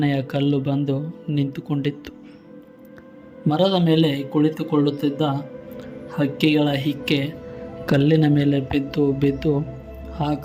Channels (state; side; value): identical; both; correlation 1.00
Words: ಕಲ್ಲು ಬಂದು ನಿಂತುಕೊಂಡಿತ್ತು. ಮರದ ಮೇಲೆ ಕುಳಿತುಕೊಳ್ಳುತ್ತಿದ್ದ ಹಕ್ಕಿಗಳ ಹಿಕ್ಕೆ ಕಲ್ಲಿನ ಮೇಲೆ ಬಿದ್ದು ಆ